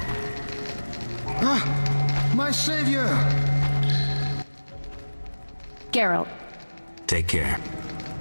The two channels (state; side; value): inverted; both; correlation -1.00